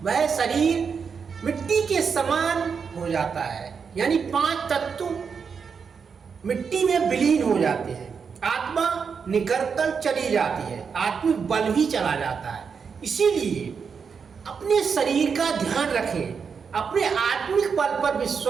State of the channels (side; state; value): left; quieter; 6.0 dB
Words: वह शरीर मिट्टी के समान हो जाता है। यानी 5 तत्व मिट्टी में विलीन हो जाते हैं। आत्मा निकलकर चली जाती है, आत्मिक बल भी चला जाता है। इसीलिए अपने शरीर का ध्यान रखें, अपने आत्मिक बल पर